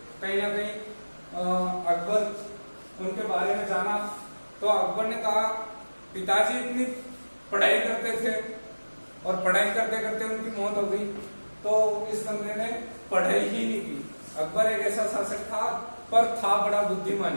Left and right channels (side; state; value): both; inverted; correlation -1.00